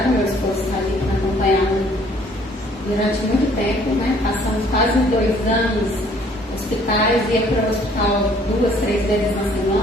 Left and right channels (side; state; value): both; normal; correlation 0.59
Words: meu esposo está ali para acompanhar durante muito tempo, né? Passamos quase 2 anos hospitais, ia para o hospital 2, 3 vezes na